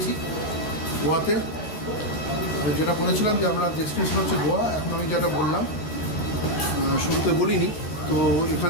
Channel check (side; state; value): right; late; 13 ms